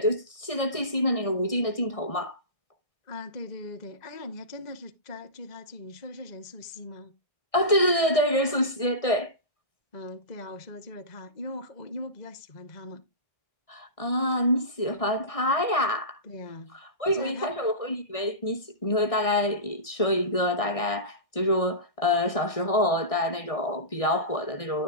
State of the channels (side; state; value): right; late; 1.6 ms